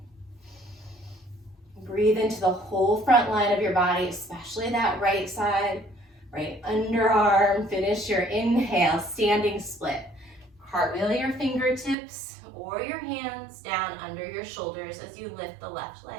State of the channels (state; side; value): drops out; left; at 12.0 s